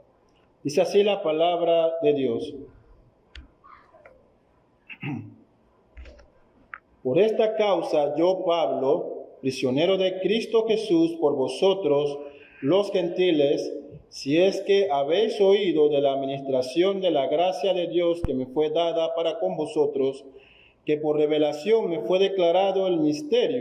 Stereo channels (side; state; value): both; identical; correlation 1.00